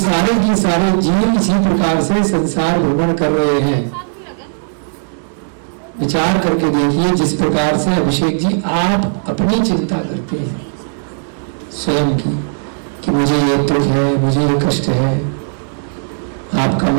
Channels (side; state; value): left; silent; digital silence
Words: की सारे जीव इसी प्रकार से संसार भ्रमण कर रहे हैं। विचार करके देखिए, जिस प्रकार से अभिषेक जी आप अपनी चिंता करते हैं स्वयं की, कि मुझे ये दुख है, मुझे ये कष्ट है, आपका